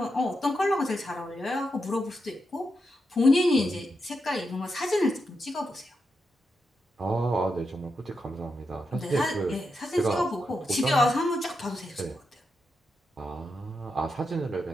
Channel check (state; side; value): normal; both; correlation 0.85